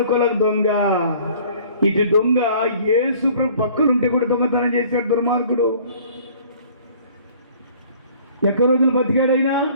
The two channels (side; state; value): both; inverted; correlation -0.52